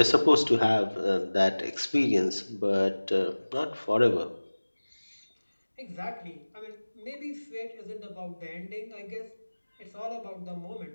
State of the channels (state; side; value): inverted; both; correlation -1.00